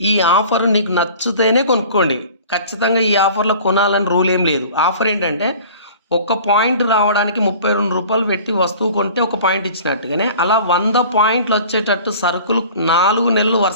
ఈ ఆఫర్ నీకు నచ్చితేనే కొనుక్కోండి. ఖచ్చితంగా ఈ ఆఫర్లో కొనాలని రూల్ ఏం లేదు. ఆఫర్ ఏంటంటే, ఒక పాయింట్ రావడానికి 32 రూపాయలు పెట్టి వస్తువు కొంటే ఒక పాయింట్ ఇచ్చినట్టుగానే అలా 100 పాయింట్లు వచ్చేటట్టు సరుకులు 4 నెలలు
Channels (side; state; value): both; inverted; correlation -0.44